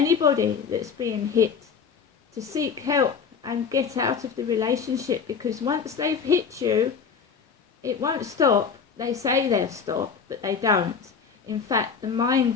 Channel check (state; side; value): quieter; right; 6.1 dB